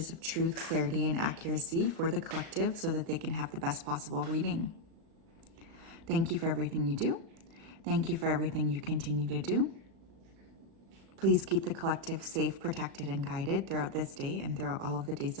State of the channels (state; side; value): late; left; 37 ms